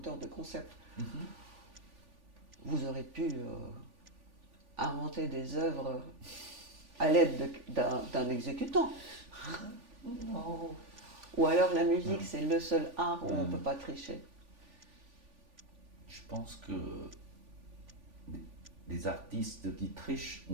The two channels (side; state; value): left; late; 3.5 ms